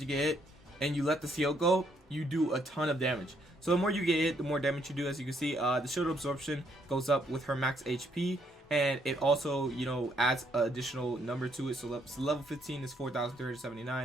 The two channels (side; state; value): both; normal; correlation 0.71